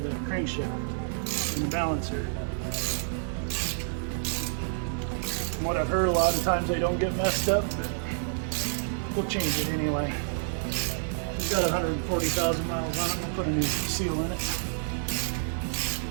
the crankshaft and the balancer. From what I've heard, a lot of times they don't get messed up, but we'll change it anyway. It's got 140,000 miles on it. We'll put a new seal in it.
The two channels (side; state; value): left; silent; 59 dB below the other